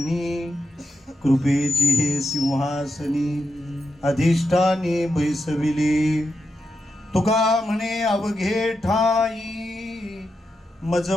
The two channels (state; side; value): normal; both; correlation 0.87